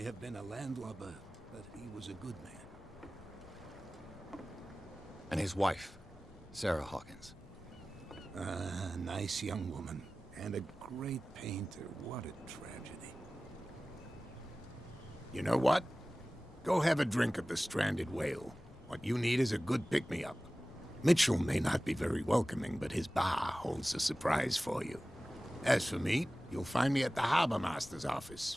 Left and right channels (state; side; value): noise; left; rumble, 22 dB below the sound